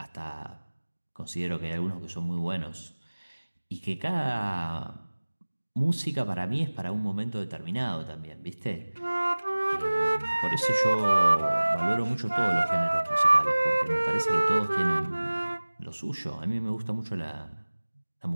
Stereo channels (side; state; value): both; inverted; correlation -1.00